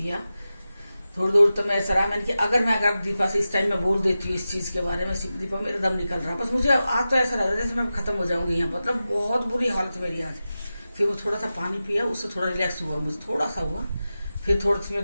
थोड़ी देर। तो मैं ऐसा रहा, मैंने कि अगर दीपा से इस टाइम में बोल देती हूँ इस चीज के बारे में, दीपा मेरा दम निकल रहा, बस मुझे आज तो ऐसा लग रहा है जैसे मैं खत्म हो जाऊंगी यहाँ, मतलब बहुत बुरी हालत मेरी आज। फिर वो थोड़ा सा पानी पिया, उससे थोड़ा रिलैक्स हुआ, मुझे थोड़ा सा हुआ। फिर थोड़ी सी मैं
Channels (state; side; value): inverted; both; correlation -0.93